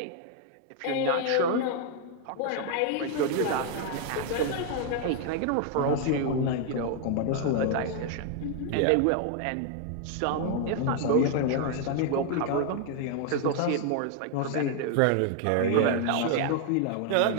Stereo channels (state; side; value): different; both; correlation 0.00